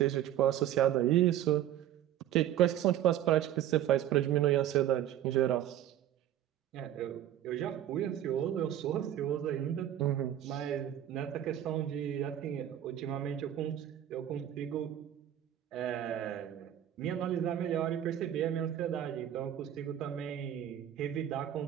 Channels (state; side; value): quieter; left; 11.5 dB